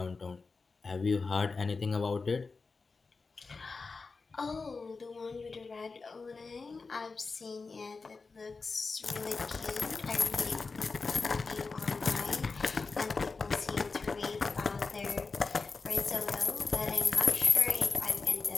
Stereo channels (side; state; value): right; quieter; 4.3 dB